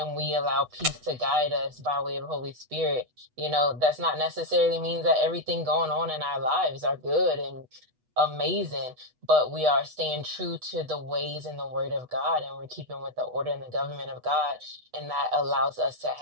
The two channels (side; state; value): left; late; 8.1 ms